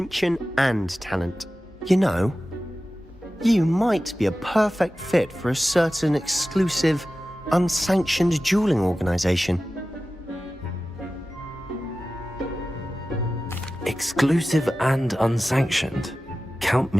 and talent. You know, you might be a perfect fit for a certain exclusive, unsanctioned dueling organization. Exclusive and unsanctioned. Count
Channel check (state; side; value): normal; both; correlation 0.95